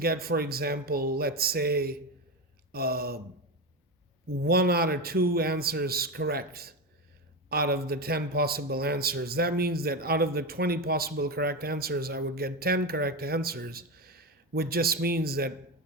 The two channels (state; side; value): normal; both; correlation 0.16